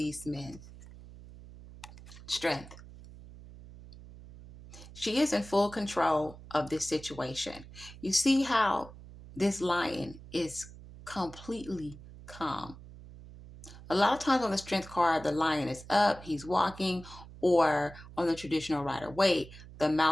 men? Strength. She is in full control of this situation. You see how this lion is completely calm. A lot of times on the strength card, the lion is up, he's walking, or on the traditional Rider-Waite, the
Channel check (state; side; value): noise; right; hum, 17 dB below the sound